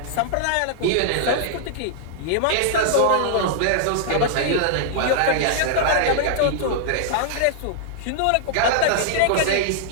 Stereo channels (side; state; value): both; different; correlation -0.01